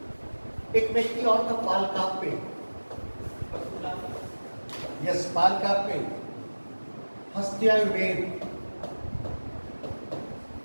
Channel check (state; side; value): inverted; both; correlation -1.00